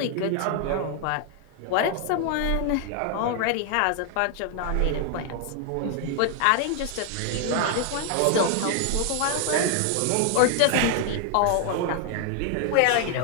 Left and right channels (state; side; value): different; both; correlation 0.00